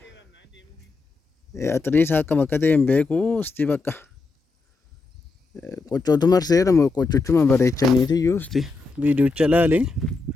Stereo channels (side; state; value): right; quieter; 3.8 dB